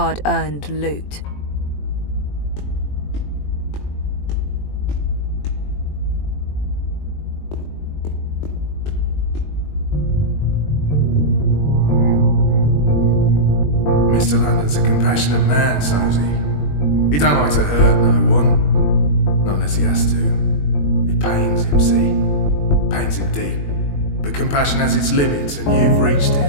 loot. Mr. London's a compassionate man, Sosie. He don't like to hurt no one. Not unless he has to. It pains him, see? Pains him deep. But compassion has its limits, and you've reached it.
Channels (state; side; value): late; right; 21 ms